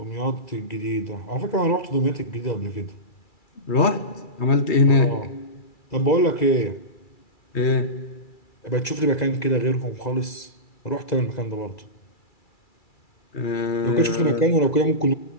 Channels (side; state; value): right; late; 2.3 ms